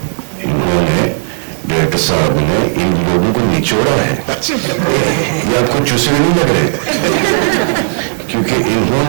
इन्होंने डायरेक्टर साहब ने इन लोगों को निचोड़ा है, ये आपको चूसने नहीं लग रहे? क्योंकि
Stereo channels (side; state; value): left; silent; digital silence